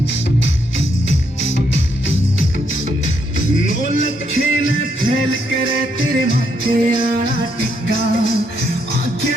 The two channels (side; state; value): both; normal; correlation 0.75